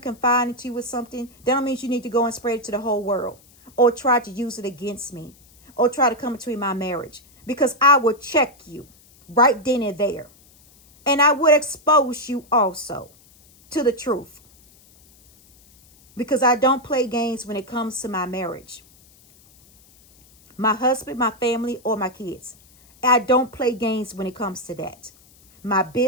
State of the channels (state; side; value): noise; left; hiss, 28 dB below the sound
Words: confide into you with something, that don't mean you need to go and spread it to the whole world, or try to use it against me, or try to come between my marriage. Because I will check you right then and there. And I would expose you also to the truth. Because I don't play games when it comes to my marriage. My husband, my family, or my kids. I don't play games when it comes to that. My